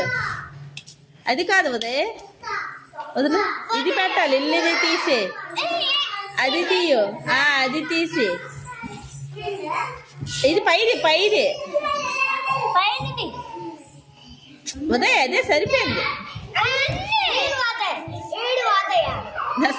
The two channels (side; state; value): both; identical; correlation 1.00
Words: అది కాదు ఉదయ్ వదిలే ఇది పెట్టాలి. ఇల్లుది తీసే అది తీయు అది తీసి ఇది పైది పైది ఉదయ్ అదే సరిపోయింది.